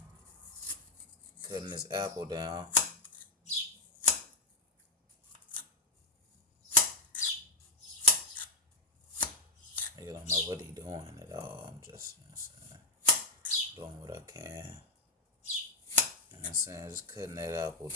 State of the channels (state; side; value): normal; both; correlation 0.02